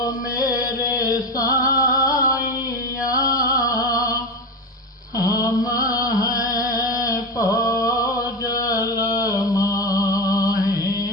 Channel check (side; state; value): both; normal; correlation 0.20